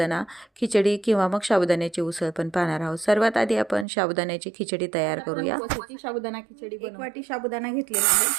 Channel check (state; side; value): drops out; left; at 3.9 s